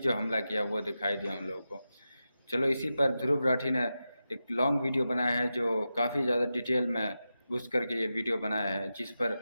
हमला किया वो दिखाई दिया उन लोगों को। चलो, इसी पर ध्रुव राठी ने एक लॉन्ग वीडियो बनाया है जो काफ़ी ज़्यादा डिटेल में घुस करके ये वीडियो बनाया है, जिस पर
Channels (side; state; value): both; inverted; correlation -0.91